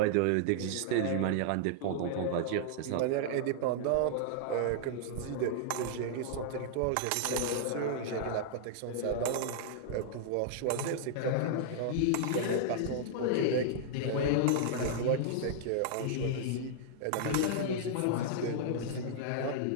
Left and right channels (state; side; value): different; both; correlation -0.01